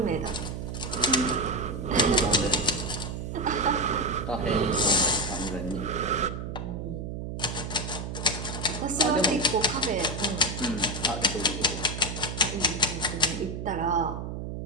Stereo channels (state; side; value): noise; right; hum, 6 dB below the sound